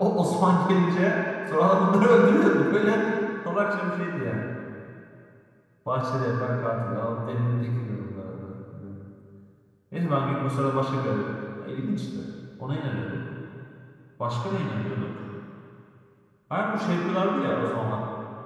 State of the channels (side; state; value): both; identical; correlation 1.00